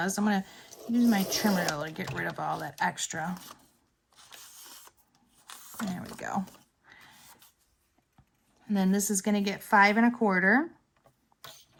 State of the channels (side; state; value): both; identical; correlation 1.00